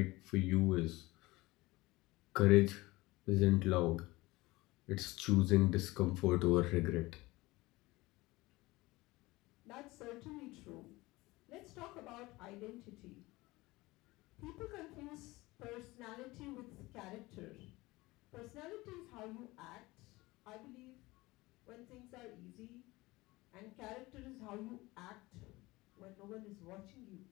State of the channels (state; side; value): quieter; right; 20.8 dB